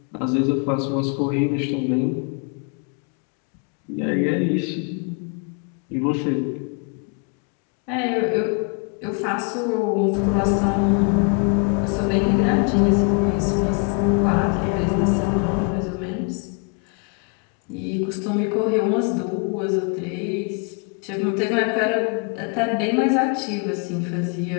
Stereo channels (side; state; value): right; quieter; 37.0 dB